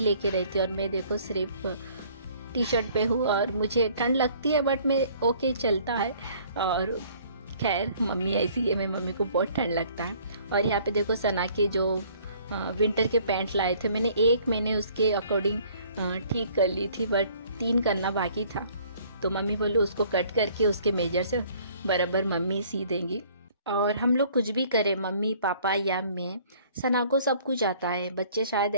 लेके रहती है। और मैं देखो सिर्फ टी शर्ट पे हूँ और मुझे ठंड लगती है, बट मैं ओके चलता है। और खैर मम्मी ऐसी है, मैं मम्मी को बहुत ठंड लगता है। और यहाँ पे देखो सना के जो विंटर के पैंट लाए थे, मैंने उसके अकॉर्डिंग ठीक कर ली थी, बट 3 करना बाकी था। तो मम्मी बोली उसको कट करके उसके मेजर से बराबर मम्मी सी देंगी। और हम लोग कुछ भी करें, मम्मी पापा या मैं, सना को सब कुछ आता है। बच्चे शायद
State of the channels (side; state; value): both; inverted; correlation -0.57